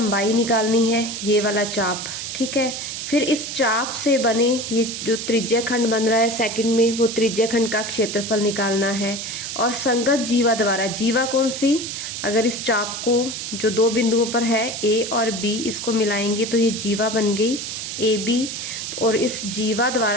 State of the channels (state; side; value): noise; right; hiss, 6 dB below the sound